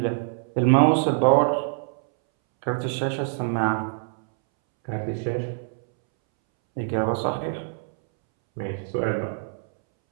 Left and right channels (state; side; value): silent; left; 62 dB below the other